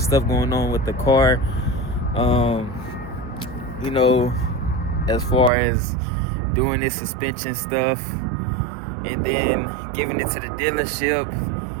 stuff going on with the car. You know, as far as doing this suspension stuff, and then giving it to the dealership,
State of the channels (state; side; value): drops out; left; at 5.5 s